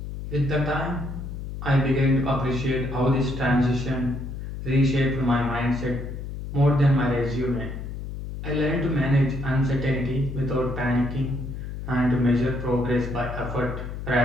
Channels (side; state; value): left; noise; hum, 7 dB below the sound